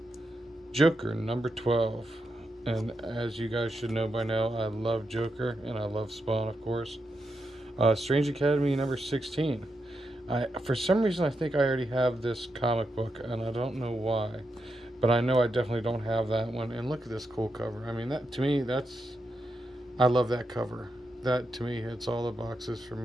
Joker number 12. And as you guys should know by now, I love Joker and I love Spawn, of course. Strange Academy number 16. For some reason, I think I already have this comic book, and I don't know why. But I know I definitely don't have that one. And look at this cool cover. I mean, that to me, I love that cover. That to me hits all the boxes for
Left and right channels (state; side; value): normal; both; correlation 0.85